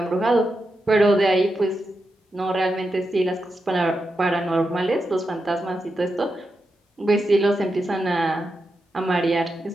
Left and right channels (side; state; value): both; normal; correlation 0.87